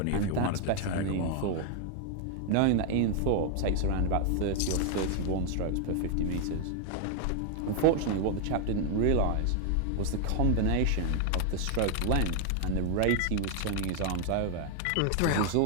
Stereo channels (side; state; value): both; different; correlation 0.00